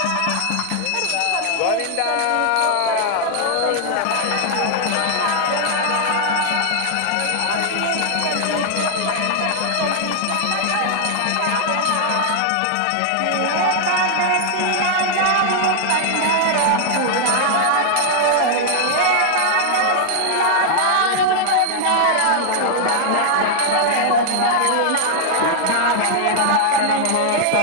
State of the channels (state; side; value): different; both; correlation 0.00